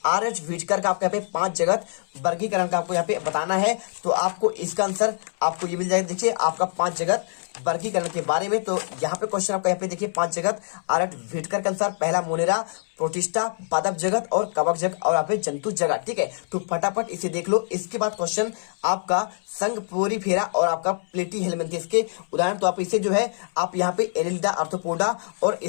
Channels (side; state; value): right; silent; 62 dB below the other